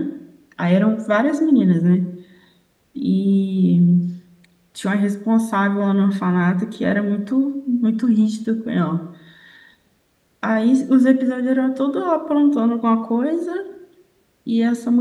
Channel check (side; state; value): both; identical; correlation 1.00